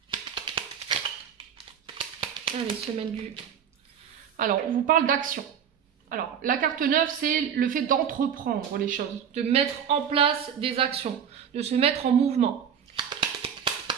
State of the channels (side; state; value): left; quieter; 8.2 dB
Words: Allez, semaine du... Alors, on vous parle d'action. Alors, la carte 9, c'est le fait d'entreprendre les choses, de mettre en place des actions, de se mettre en mouvement.